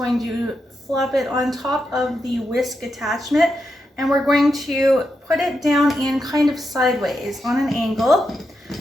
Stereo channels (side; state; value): both; normal; correlation 0.85